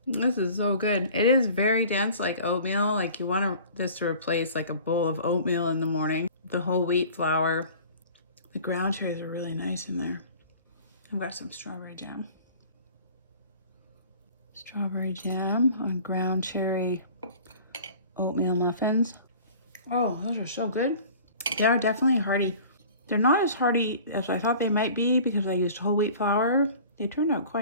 This is so good. It is very dense, like oatmeal. Like you want this to replace like a bowl of oatmeal in the morning. The whole wheat flour. The ground cherries are really nice in there. I've got some strawberry jam. Strawberry jam on ground cherry oatmeal muffins. Oh, those are so good. They are definitely hearty. They're not as hearty as I thought they might be because I used whole wheat flour. They turned out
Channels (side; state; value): both; inverted; correlation -0.45